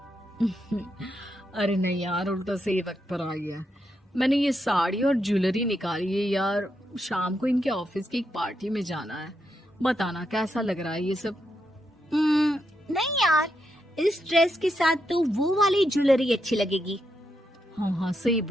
अरे नहीं यार, उल्टा सही वक्त पर आ गया। मैंने ये साड़ी और ज्वेलरी निकाली है यार, शाम को इनके ऑफिस की एक पार्टी में जाना है। बताना कैसा लग रहा है ये सब? नहीं यार, इस ड्रेस के साथ तो वो वाली ज्वेलरी अच्छी लगेगी। हाँ हाँ सही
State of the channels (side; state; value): both; normal; correlation 0.83